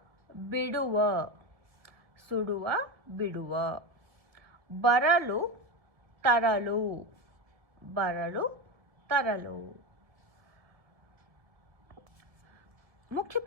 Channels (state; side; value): late; left; 1.8 ms